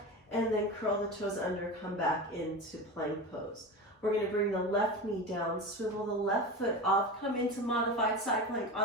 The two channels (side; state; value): both; normal; correlation 0.26